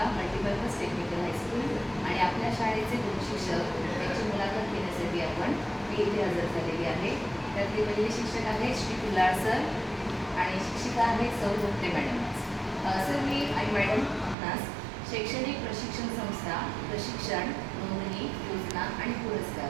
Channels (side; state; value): left; drops out; at 14.4 s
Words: multipurpose technical high school आणि आपल्या शाळेचे 2 शिक्षक यांची मुलाखत घेण्यासाठी आपण मी इथे हजर झालेली आहे. त्यातले पहिले शिक्षक आहेत श्री कुल्हार सर आणि शिक्षिका आहेत सौ गोपटे मॅडम. सर मी आणि मॅडम आपणास शैक्षणिक प्रशिक्षण संस्था, प्रशिक्षण, नोंदणी, योजना आणि